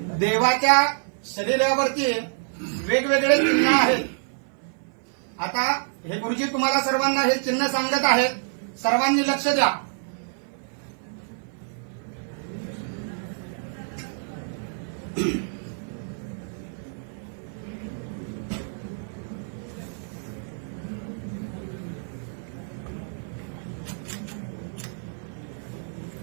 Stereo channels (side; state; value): left; silent; 55 dB below the other